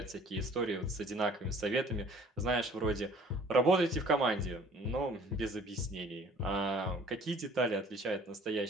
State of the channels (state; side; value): normal; both; correlation 0.52